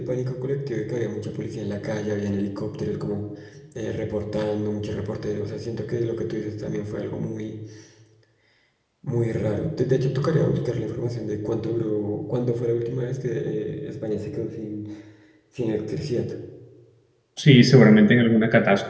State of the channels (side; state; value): both; identical; correlation 1.00